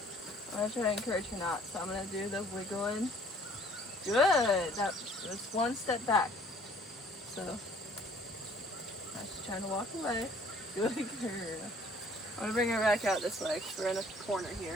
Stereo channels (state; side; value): normal; both; correlation 0.57